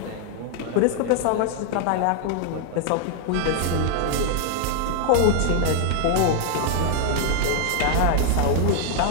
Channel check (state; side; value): different; both; correlation 0.00